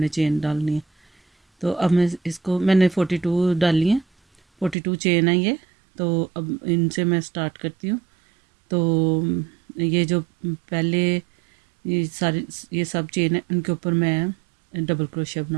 चेन डालनी है। तो अब मैं इसको मैंने 42 डाली हैं, 42 चेन है ये। तो अब इनसे मैं स्टार्ट करती हूँ। तो ये जो पहले ये सब चेन है, इनके ऊपर मैं डबल क्रोशिया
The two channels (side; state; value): left; drops out; at 4.8 s